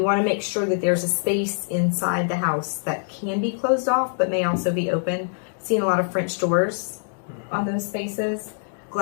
want to make sure that there's a space inside the house that can be closed off, but may also be open. Seeing a lot of French doors on those spaces,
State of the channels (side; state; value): right; silent; digital silence